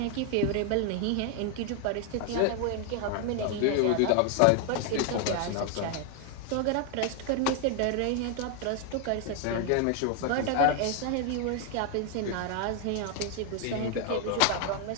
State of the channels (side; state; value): both; different; correlation 0.00